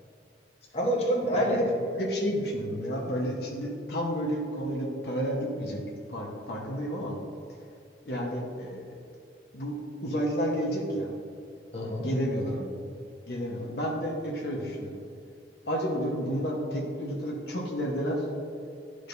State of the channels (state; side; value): normal; both; correlation 0.45